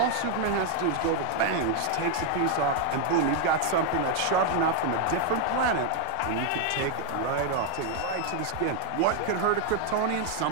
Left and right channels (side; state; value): both; different; correlation 0.00